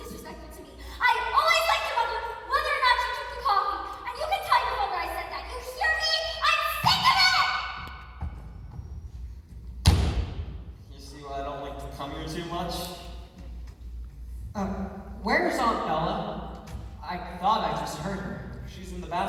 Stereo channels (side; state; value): both; identical; correlation 1.00